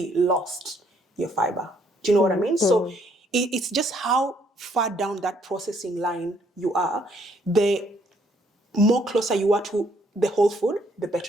lost your fiber. Do you know what I mean? So it's just how far down that processing line you are. The more closer you are to the whole food, the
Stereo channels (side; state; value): both; normal; correlation 0.67